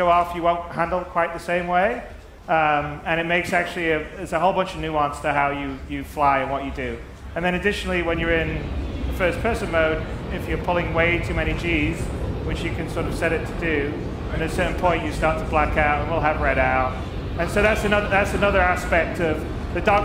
off, you won't handle it quite the same way. And it makes actually, there's a whole bunch of nuance to how you fly and what you do. And then additionally, when you're in the first person mode, if you're pulling way too many Gs, which you can sort of set it to do, and at a certain point you start to black out and we'll have red out. And so that's another aspect of the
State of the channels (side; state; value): both; identical; correlation 1.00